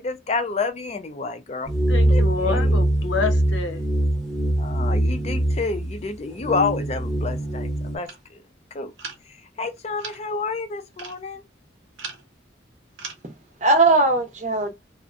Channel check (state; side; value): normal; both; correlation 0.44